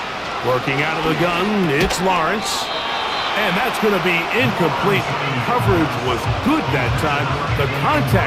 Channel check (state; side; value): identical; both; correlation 1.00